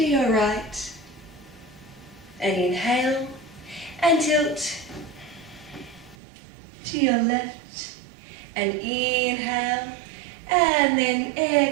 your right. And inhale and tilt to your left. And inhale and then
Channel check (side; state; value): left; drops out; at 6.2 s